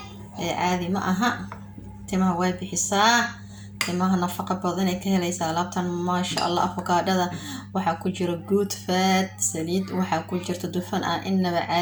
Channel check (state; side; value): identical; both; correlation 1.00